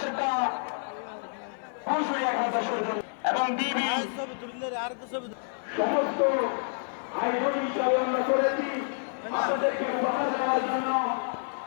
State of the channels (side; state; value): right; silent; digital silence